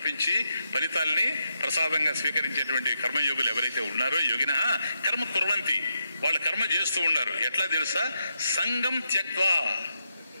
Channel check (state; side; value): inverted; both; correlation -0.82